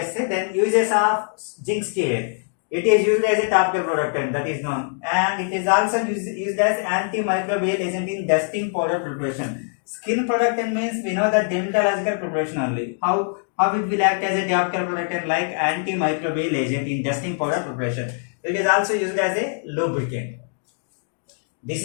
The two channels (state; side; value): silent; right; 62 dB below the other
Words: Then uses of zinc stearate. It is used as a topical productant, that is known, and it is also used as antimicrobial agent in dusting powder preparation. Skin productant means we know that dermatological preparation only. How it will act as a topical productant like antimicrobial agent in dusting powder preparation. It is also used as a lubricant. This